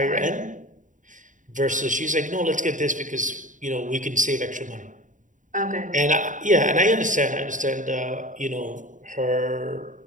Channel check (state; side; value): late; left; 0.37 ms